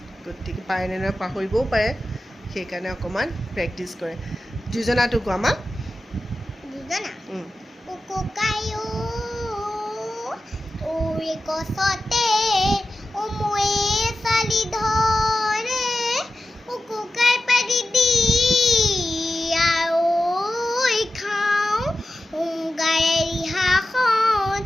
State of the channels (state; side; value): normal; both; correlation 0.93